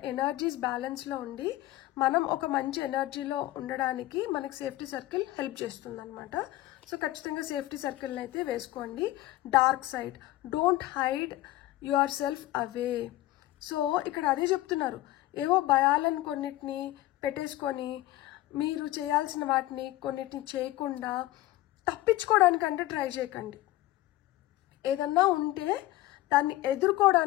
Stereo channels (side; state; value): right; quieter; 16.5 dB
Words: ఎనర్జీస్ బ్యాలెన్స్లో ఉండి మనం ఒక మంచి ఎనర్జీలో ఉండడానికి మనకి సేఫ్టీ సర్కిల్ హెల్ప్ చేస్తుంది అనమాట. సో ఖచ్చితంగా సేఫ్టీ సర్కిల్ని అయితే వేసుకోండి. Dark side, don't hide your self away. So ఇక్కడ అదే చెప్తున్నారు, ఏవో భయాలను కొన్నిటిని పెట్టేసుకొని మీరు చేయాల్సిన వాటిని కొన్నిటిని చేయకుండా తప్పించుకోవడానికంటే ట్రై చేయకండి. ఏదన్నా ఉంటే దాన్ని